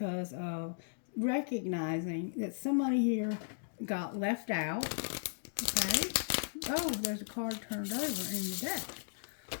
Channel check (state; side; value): silent; right; digital silence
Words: of recognizing that somebody here got left out. Okay. Oh, there's a card turned over in the deck.